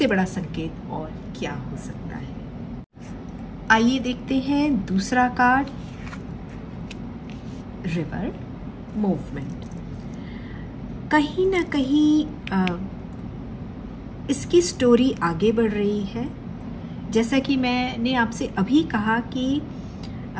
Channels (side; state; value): both; identical; correlation 1.00